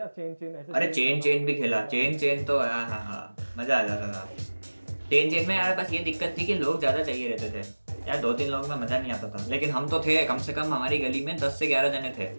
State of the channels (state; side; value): inverted; both; correlation -1.00